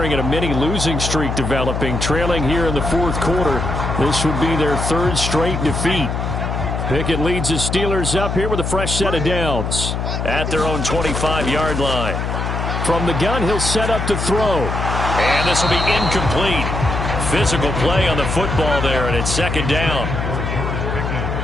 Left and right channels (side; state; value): left; noise; hum, 2 dB below the sound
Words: at a mini losing streak developing, trailing here in the fourth quarter. This would be their third straight defeat. Pickett leads his Steelers up here with a fresh set of downs. At their own 25-yard line. From the gun, he'll set up to throw. And this will be incomplete. Physical play on the football there, and it's second down.